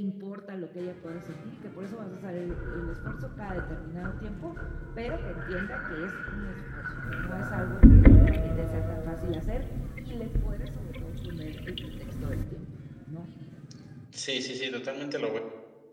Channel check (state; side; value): identical; both; correlation 1.00